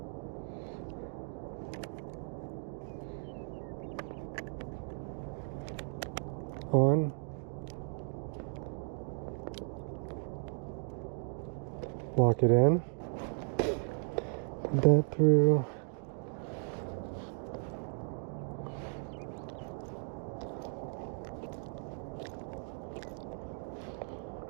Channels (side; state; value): left; silent; 54 dB below the other